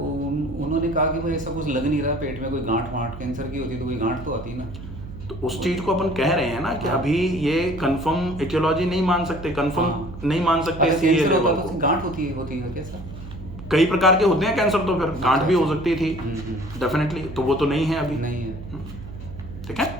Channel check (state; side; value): noise; right; hum, 12 dB below the sound